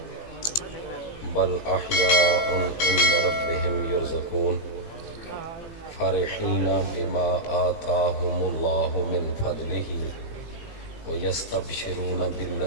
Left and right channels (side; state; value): right; late; 18 ms